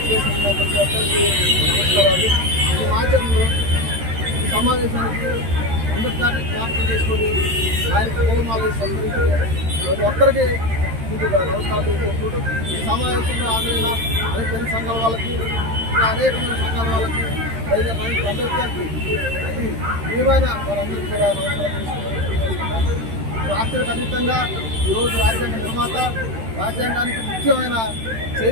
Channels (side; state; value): left; late; 13 ms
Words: ప్రతి ఒక్కరికి నమస్కారాలు. ఈ మాధ్యమంలో ఈ సమావేశానికి అంబేద్కర్ని జ్ఞాపకం చేసుకొని ఆయన పూలమాల సంస్కరించి ప్రతి ఒక్కరికి ముందుగా నమస్కారాలు తెలియజేసుకుంటూ ఈ సమావేశంలో హాజరైన అనేక తెలుగు సంఘాల వాళ్ళకి, ఇంకా అనేకమైన సంఘాల వాళ్ళకి, అంబేద్కర్కి విలువైన వారందరికీ కూడా నమస్కారం తెలుసుకుంటున్నాం. రాష్ట్రానికి అతీతంగా ఈరోజు రాజ్యాంగ నిర్మాత, రాజ్యాంగానికి ముఖ్యమైన